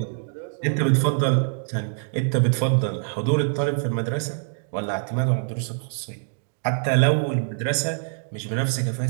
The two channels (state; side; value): silent; left; digital silence